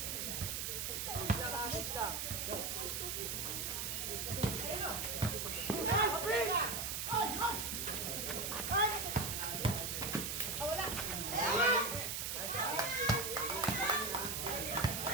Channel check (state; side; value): noise; right; hiss, 2 dB below the sound